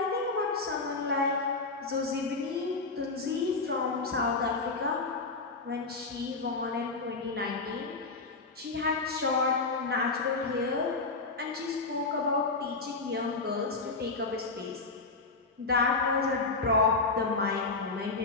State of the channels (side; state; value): right; quieter; 3.8 dB